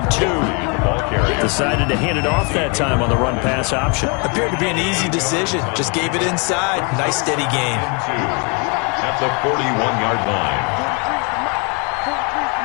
2. Decided to hand it off that time on the run-pass option. Appeared to be an easy decision. Just gave it inside. Nice steady gain. At the 41-yard line.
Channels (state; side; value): quieter; right; 32.1 dB